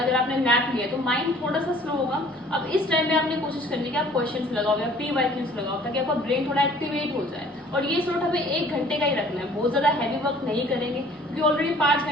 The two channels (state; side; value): normal; both; correlation 0.53